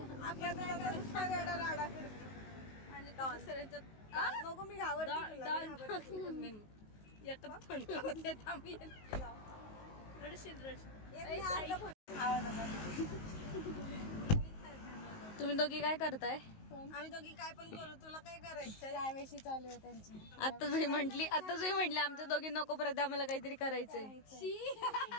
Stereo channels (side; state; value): right; late; 19 ms